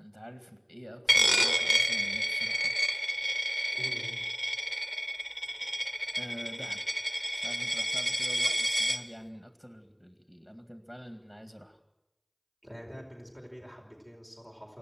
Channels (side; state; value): both; identical; correlation 1.00